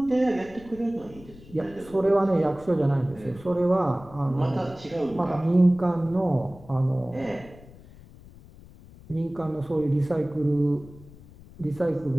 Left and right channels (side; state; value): left; noise; rumble, 21 dB below the sound